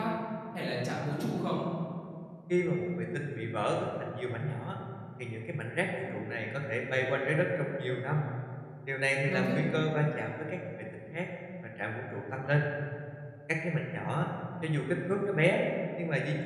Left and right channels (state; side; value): identical; both; correlation 1.00